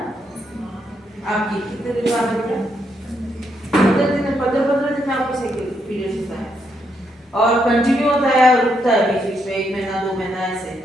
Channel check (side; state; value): both; normal; correlation 0.78